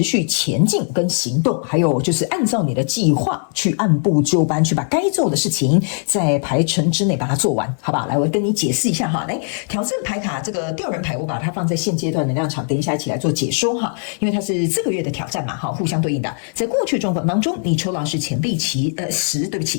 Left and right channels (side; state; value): right; silent; 64 dB below the other